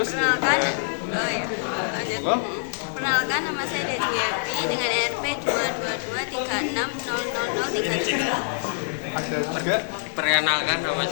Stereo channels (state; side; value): silent; right; 61 dB below the other